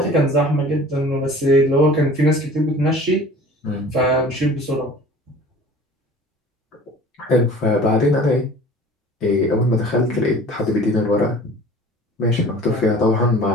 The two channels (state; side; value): normal; both; correlation 0.44